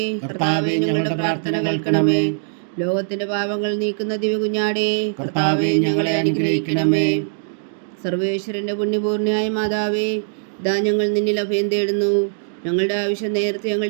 കർത്താവേ, ഞങ്ങളുടെ പ്രാർത്ഥന കേൾക്കണമേ. ലോകത്തിന്റെ പാപങ്ങൾ നീക്കുന്ന ദിവ്യകുഞ്ഞാടേ കർത്താവേ, ഞങ്ങളെ അനുഗ്രഹിക്കണമേ. സർവേശ്വരന്റെ പുണ്യപൂർണ്ണയായ മാതാവേ, ഇതാ ഞങ്ങൾ നിന്നിൽ അഭയം തേടുന്നു. ഞങ്ങളുടെ ആവശ്യം നേരത്തെ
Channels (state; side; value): silent; left; digital silence